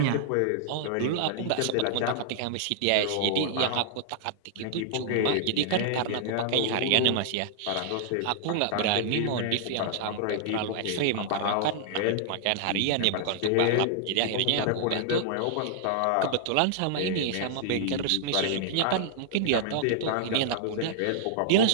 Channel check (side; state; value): both; different; correlation -0.01